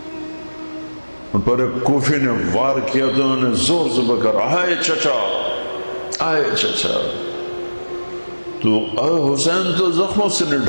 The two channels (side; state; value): both; inverted; correlation -1.00